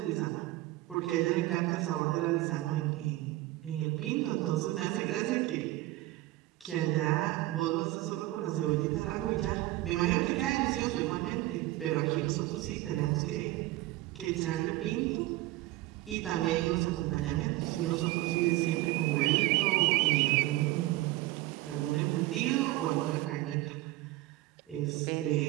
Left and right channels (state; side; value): quieter; left; 17.6 dB